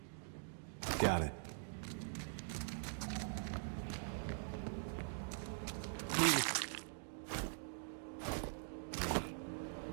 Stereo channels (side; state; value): left; silent; digital silence